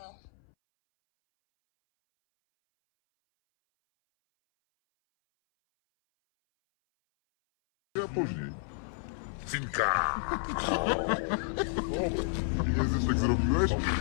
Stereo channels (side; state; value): right; silent; 57 dB below the other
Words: Ja później. Finka! Nie jesteś tak zrobiłeś?